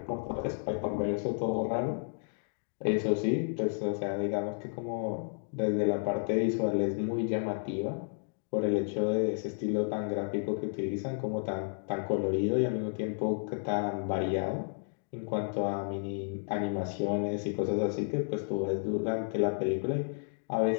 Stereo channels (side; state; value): right; silent; digital silence